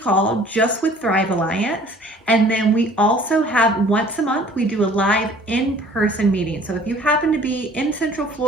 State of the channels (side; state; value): both; normal; correlation 0.52